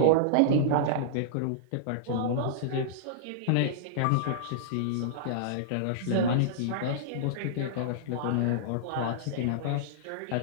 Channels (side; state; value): both; different; correlation -0.02